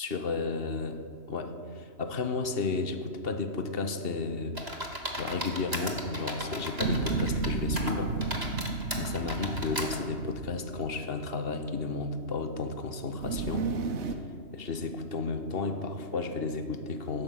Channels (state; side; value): late; left; 2.9 ms